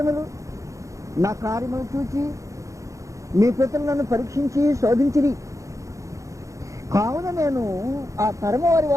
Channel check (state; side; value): late; left; 0.15 ms